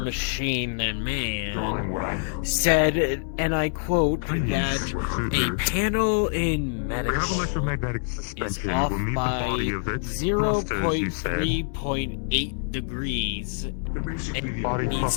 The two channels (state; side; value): silent; right; digital silence